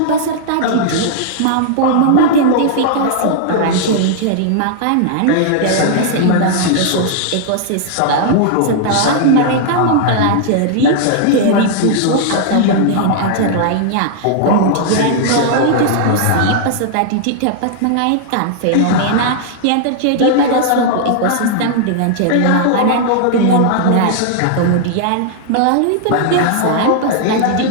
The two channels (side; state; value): both; different; correlation -0.01